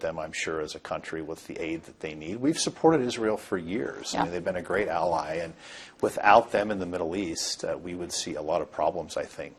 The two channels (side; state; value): both; identical; correlation 1.00